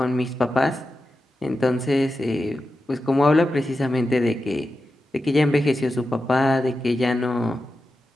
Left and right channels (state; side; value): normal; both; correlation 0.91